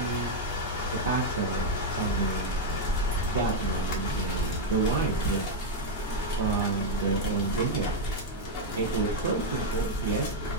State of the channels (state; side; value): normal; both; correlation 0.01